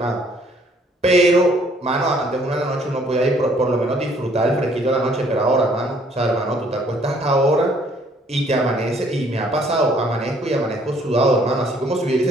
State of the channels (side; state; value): both; normal; correlation 0.62